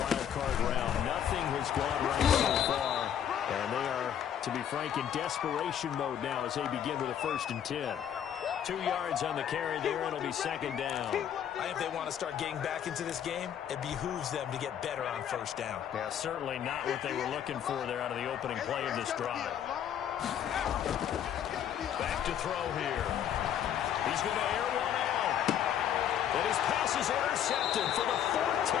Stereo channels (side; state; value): right; quieter; 9.6 dB